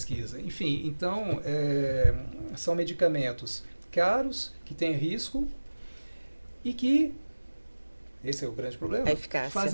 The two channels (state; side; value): inverted; both; correlation -1.00